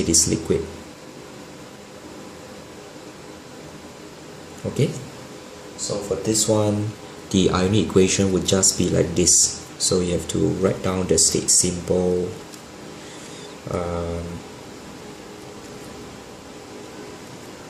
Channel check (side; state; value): both; identical; correlation 1.00